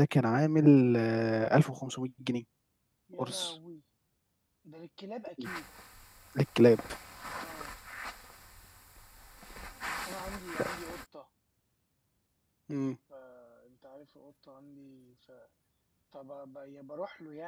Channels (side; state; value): both; identical; correlation 1.00